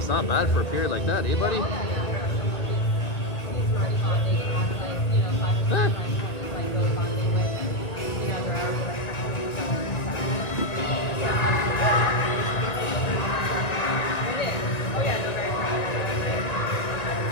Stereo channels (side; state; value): right; late; 2.0 ms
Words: not bad for a period like that, eh, buddy? Huh.